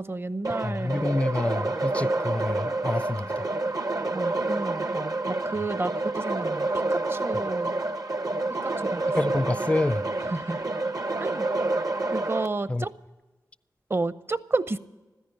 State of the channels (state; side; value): normal; both; correlation 0.86